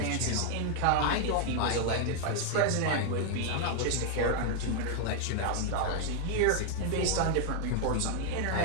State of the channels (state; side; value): different; both; correlation 0.00